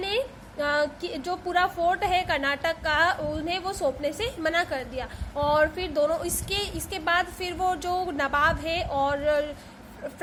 जो पूरा फोर्ट है कर्नाटक का, उन्हें वो सौंपने से मना कर दिया। और फिर दोनों इसके बाद फिर वो जो नवाब है और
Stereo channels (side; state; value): both; identical; correlation 1.00